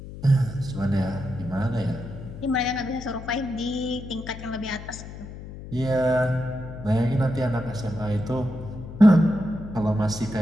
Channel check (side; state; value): left; noise; hum, 12 dB below the sound